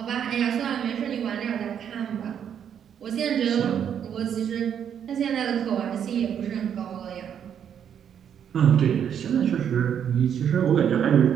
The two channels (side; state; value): left; quieter; 8.6 dB